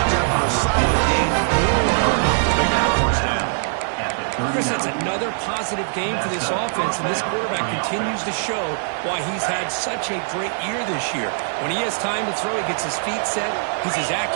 there for a solid gain. Big first down. Chris, that's another positive game for this offense, and this quarterback continues to show why he's had such a great year this year. When he has time to throw, he gets his feet set. He's as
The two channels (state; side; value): silent; left; digital silence